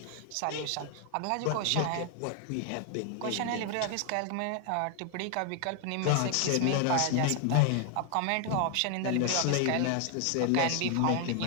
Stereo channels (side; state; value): both; different; correlation 0.00